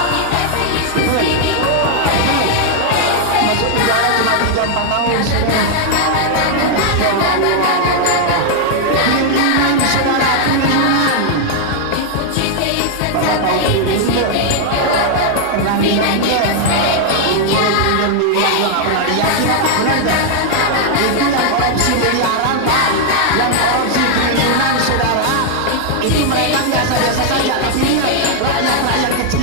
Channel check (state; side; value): different; both; correlation 0.00